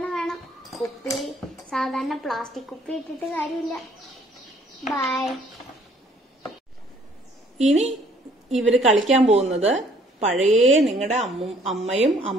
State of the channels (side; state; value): both; normal; correlation 0.61